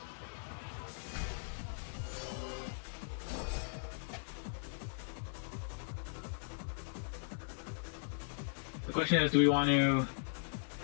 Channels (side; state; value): right; silent; 52 dB below the other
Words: The question is, do we want to